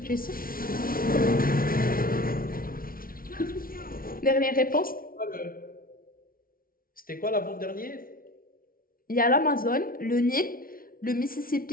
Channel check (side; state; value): right; late; 0.42 ms